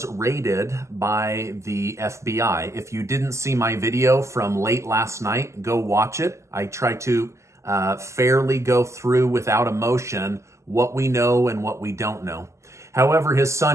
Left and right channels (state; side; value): late; left; 0.14 ms